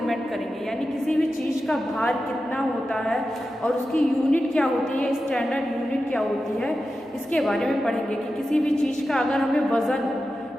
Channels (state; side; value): normal; both; correlation 0.92